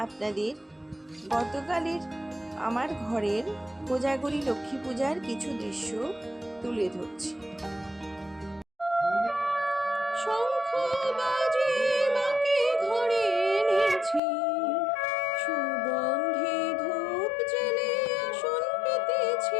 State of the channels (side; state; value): right; drops out; at 14.2 s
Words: আপনাদের গতকালের আমার ঘরের কোজাগরী লক্ষ্মী পূজার কিছু দৃশ্য তুলে ধরছি। শঙ্খ বাজে মাকে ঘরে এনেছি, সুগন্ধি ধূপ জেলে আসন